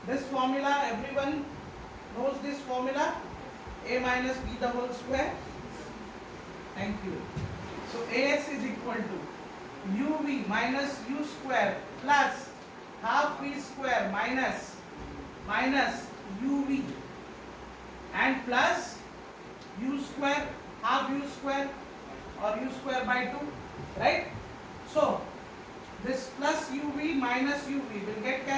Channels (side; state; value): both; identical; correlation 1.00